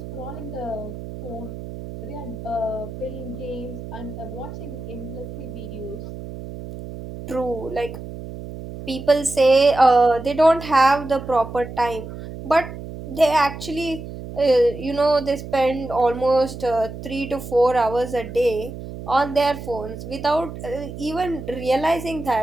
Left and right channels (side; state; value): right; noise; hum, 11 dB below the sound